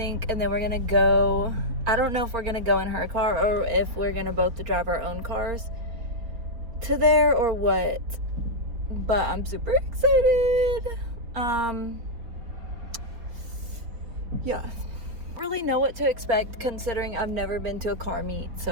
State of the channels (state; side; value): late; left; 4.5 ms